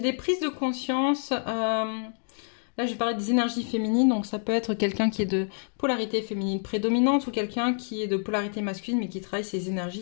prises de conscience... Là, je vais parler des énergies féminines, donc ça peut être quelqu'un qui est de polarité féminine prédominante ou quelqu'un qui est de polarité masculine mais qui travaille ses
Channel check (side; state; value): right; silent; 60 dB below the other